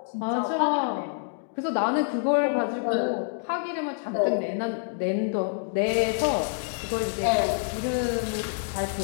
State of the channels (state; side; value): silent; right; digital silence